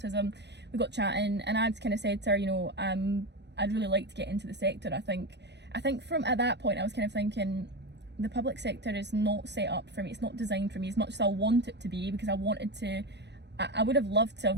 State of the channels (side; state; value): left; late; 0.50 ms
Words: We got chatting, and I'd kind of said to her, you know, I'd really like to get into the sector. I think from at that point I was kind of thinking, the public sector is not set up for me. It's not designed for me as much as I want it to be, because I would have loved to have